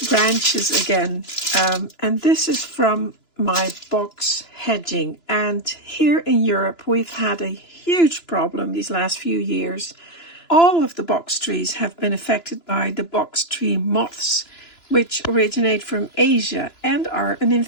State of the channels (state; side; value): late; right; 2.9 ms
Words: branches again. And this is from my box hedging. And here in Europe, we've had a huge problem these last few years. All of the box trees have been affected by the box tree moths, which originate from Asia and are an